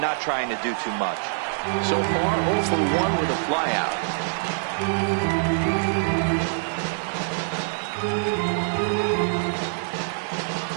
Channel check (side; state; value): left; silent; digital silence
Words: trying to do too much. So far, 0 for 1 with a flyout.